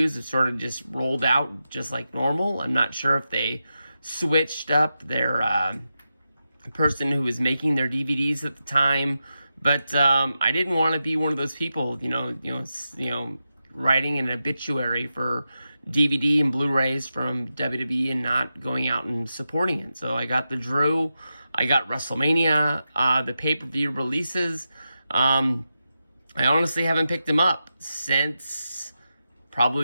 have sort of just rolled out just like normal. I'm not sure if they switched up their person who was making their DVDs at the time, but I didn't want to be one of those people, writing an obituary for DVD and Blu-rays from WWE and not going out and supporting it. So I got the Drew, I got WrestleMania, the pay-per-view releases. I honestly haven't picked them up since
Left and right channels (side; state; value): both; inverted; correlation -0.90